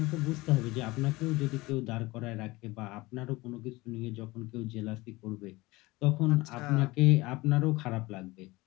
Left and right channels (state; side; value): quieter; right; 21.2 dB